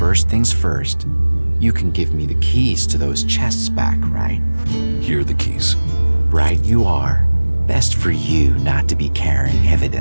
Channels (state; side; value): inverted; both; correlation -1.00